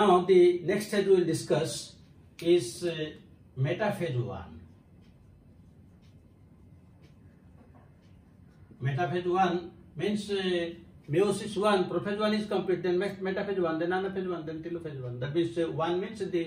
the next stage we will discuss is metaphase-1. Metaphase-1 means meiosis-1, prophase-1 is complete, then metaphase-1, then anaphase-1, then telophase-1. That means 1 means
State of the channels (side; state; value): both; identical; correlation 1.00